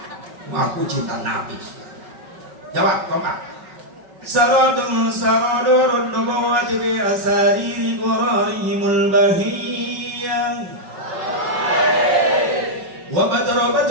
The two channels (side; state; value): left; late; 5.4 ms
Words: aku cinta Nabi. Jawab kompak. Saradun saradurun nubuwati bi asariri qurarihimul bahiyah wa